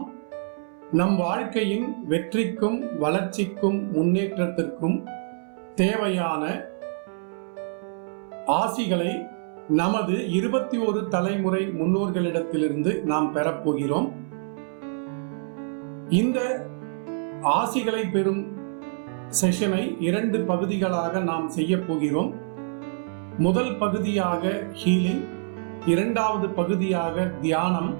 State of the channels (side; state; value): left; silent; 61 dB below the other